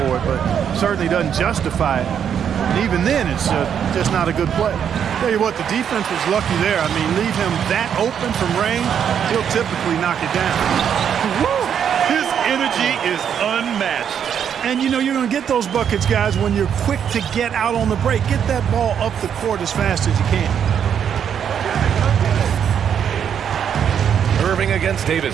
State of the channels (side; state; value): left; quieter; 8.3 dB